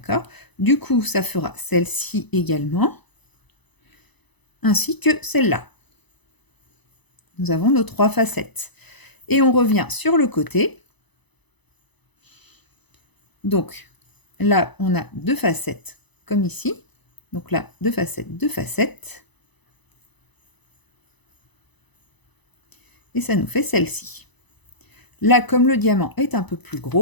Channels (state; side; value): late; right; 0.99 ms